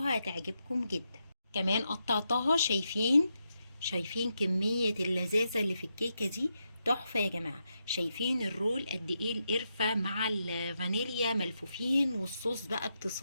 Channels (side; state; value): both; inverted; correlation -0.84